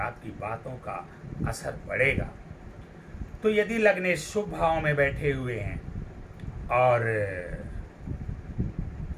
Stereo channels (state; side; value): identical; both; correlation 1.00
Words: बातों का असर पड़ेगा। तो यदि लग्नेश शुभ भाव में बैठे हुए हैं और